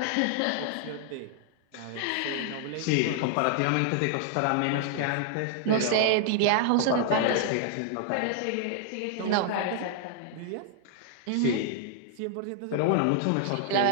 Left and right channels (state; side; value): different; both; correlation -0.01